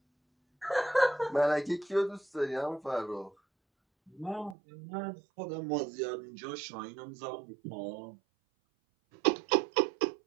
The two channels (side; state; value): left; drops out; at 4.5 s